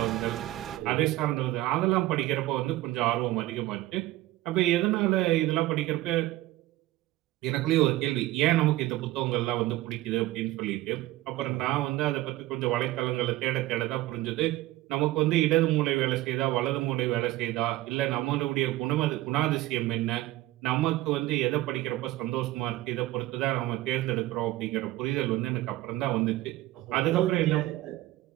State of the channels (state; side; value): quieter; left; 16.8 dB